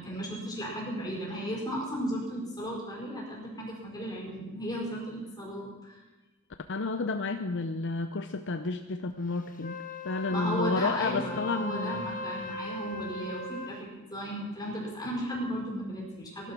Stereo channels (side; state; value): both; normal; correlation 0.30